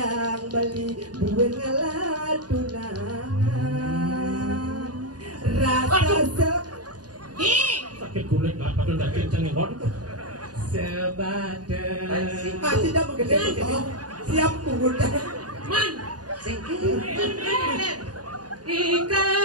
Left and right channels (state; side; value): late; left; 0.69 ms